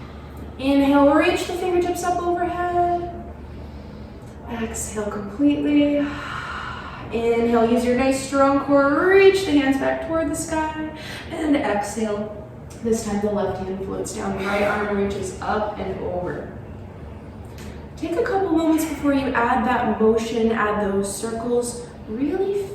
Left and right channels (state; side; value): identical; both; correlation 1.00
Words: Inhale, reach the fingertips up overhead. Exhale completely. Inhale, use your nice strong core. Reach the hands back toward the sky. And exhale. This time the left hand floats down, the right arm reaches up and over. Take a couple moments before you add that motion, add those circles. Really